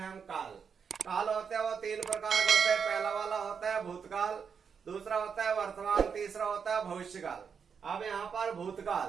काल। काल होते हैं वो तीन प्रकार के होते हैं। पहला वाला होता है भूतकाल, दूसरा होता है वर्तमान, तीसरा होता है भविष्यकाल। अब यहाँ पर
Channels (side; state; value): left; quieter; 6.5 dB